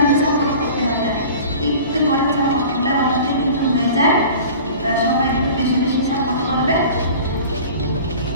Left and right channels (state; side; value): inverted; both; correlation -0.41